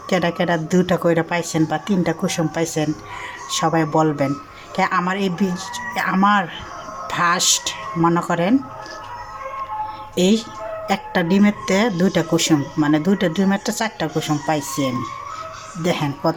কেডা কেডা 2টা কইরা পাইছেন বা 3টা কুসুম পাইছেন, সবাই বলবেন। আমার আমার ফার্স্ট মনে করেন এই একটা ডিমেরতে 2টা কুসুম, মানে 2টা ডিমেরতে 4টা কুসুম পাইছি আমি। দেখেন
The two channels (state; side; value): identical; both; correlation 1.00